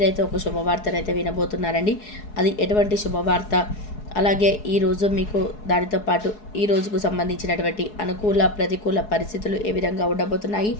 ఒక శుభవార్తనైతే వినబోతున్నారండి. అది ఎటువంటి శుభవార్త, అలాగే ఈరోజు మీకు దానితో పాటు ఈ రోజుకు సంబంధించినటువంటి అనుకూల ప్రతికూల పరిస్థితులు ఏ విధంగా ఉండబోతున్నాయి,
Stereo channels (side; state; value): right; late; 4.7 ms